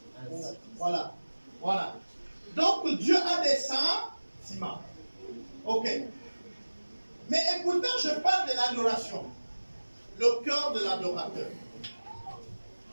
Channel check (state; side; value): inverted; both; correlation -1.00